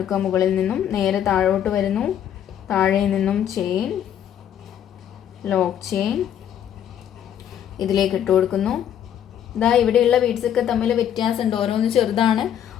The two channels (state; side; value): quieter; right; 9.8 dB